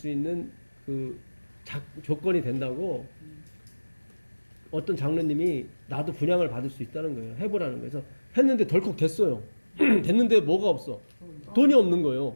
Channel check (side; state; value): both; inverted; correlation -1.00